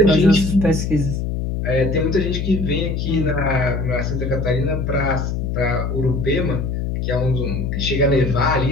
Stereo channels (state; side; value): noise; left; hum, 2 dB below the sound